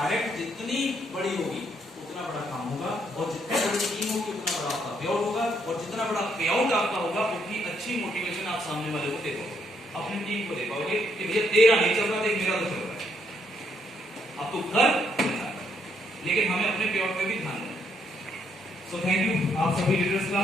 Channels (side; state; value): both; normal; correlation 0.73